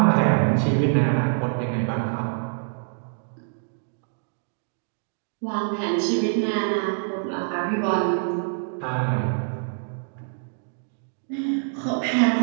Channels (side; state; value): left; silent; digital silence